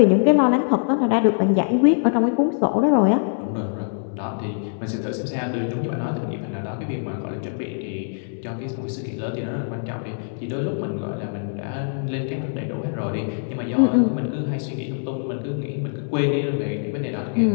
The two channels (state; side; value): silent; right; digital silence